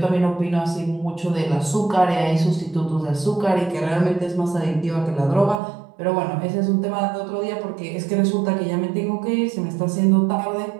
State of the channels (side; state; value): left; drops out; at 5.6 s